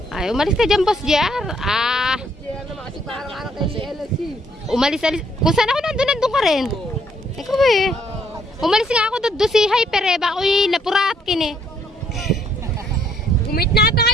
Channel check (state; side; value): normal; both; correlation 0.67